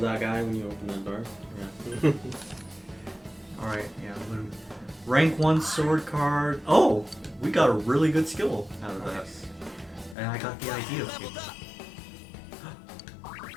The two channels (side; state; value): right; drops out; at 10.2 s